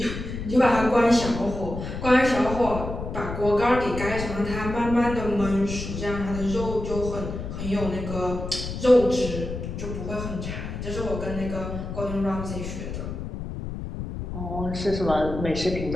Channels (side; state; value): left; noise; rumble, 7 dB below the sound